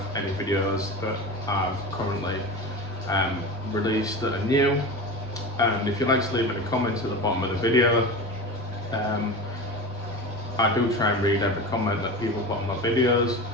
any videos that I've currently released that are new. And if you'd like to leave any comments at the bottom of the video, I do try and read every comment that people put on my videos.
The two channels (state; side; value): normal; both; correlation 0.28